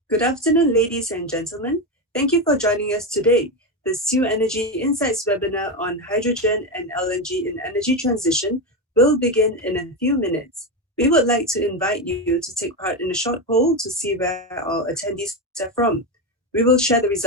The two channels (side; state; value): both; normal; correlation 0.13